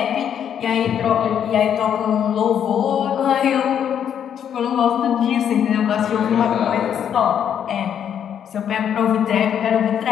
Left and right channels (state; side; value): quieter; right; 8.9 dB